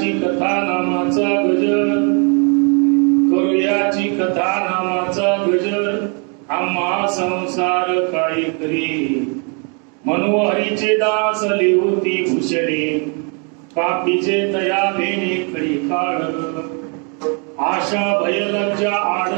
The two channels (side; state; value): left; quieter; 36.7 dB